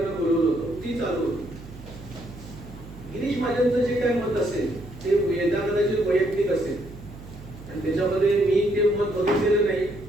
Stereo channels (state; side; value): noise; right; hum, 16 dB below the sound